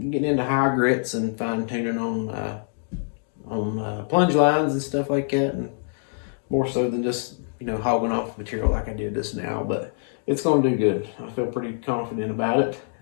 into higher grits and fine tuning on plunge lines and stuff like that, and more so than just hogging off material like I did this now. But it's going to do good. I feel pretty confident about it.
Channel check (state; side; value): silent; right; digital silence